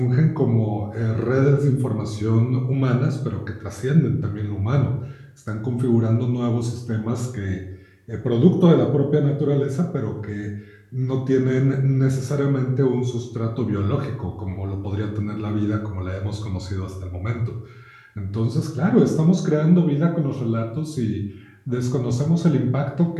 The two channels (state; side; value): identical; both; correlation 1.00